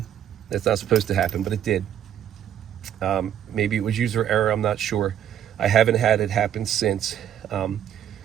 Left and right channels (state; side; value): quieter; left; 10.3 dB